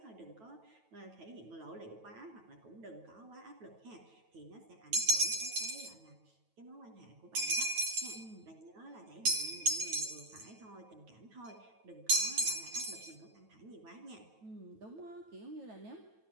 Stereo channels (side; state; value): left; late; 9.2 ms